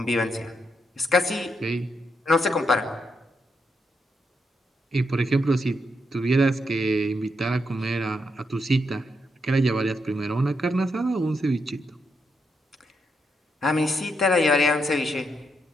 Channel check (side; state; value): both; normal; correlation 0.81